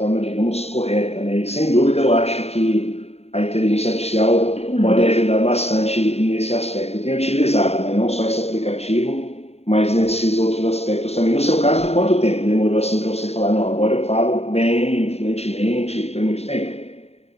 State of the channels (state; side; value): late; right; 0.30 ms